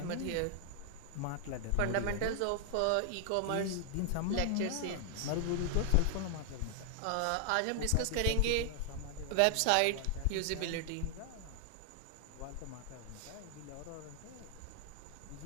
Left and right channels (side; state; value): both; different; correlation 0.00